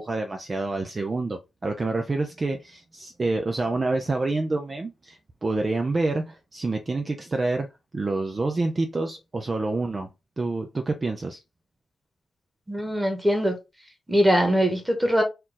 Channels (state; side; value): normal; both; correlation 0.93